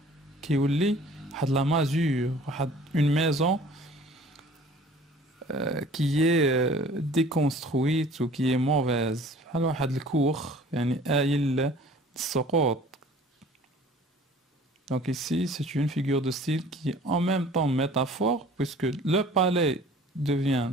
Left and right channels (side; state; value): both; normal; correlation 0.49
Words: كيولي واحد la masure, une maison qui est déconstruite ou qui est mauvaise. بحال واحد الكوخ يعني آيل السقوط. Donc ici, c'est une figure de style qui est en même temps métaphore, puisque le palais devient